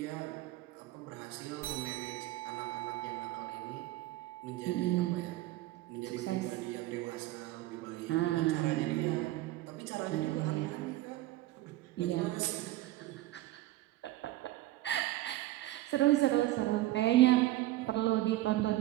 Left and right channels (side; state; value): left; quieter; 16.3 dB